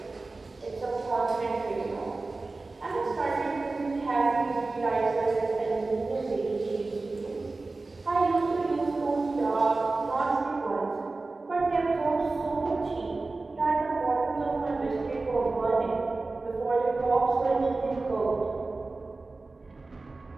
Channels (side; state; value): left; quieter; 3.5 dB